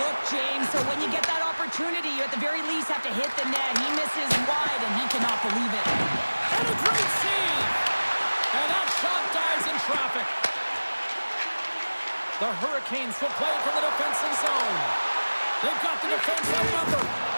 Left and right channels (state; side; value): inverted; both; correlation -1.00